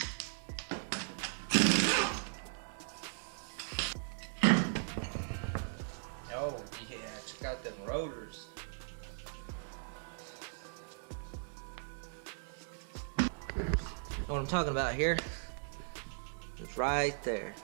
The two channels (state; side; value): silent; left; 52 dB below the other